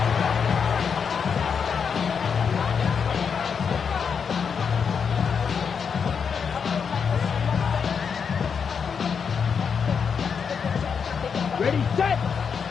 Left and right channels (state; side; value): quieter; right; 6.4 dB